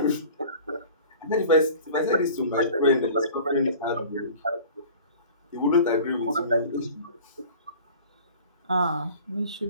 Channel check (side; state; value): both; inverted; correlation -0.44